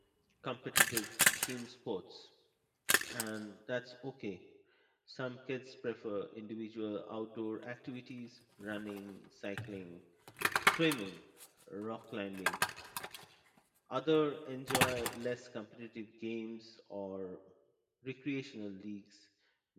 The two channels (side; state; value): both; identical; correlation 1.00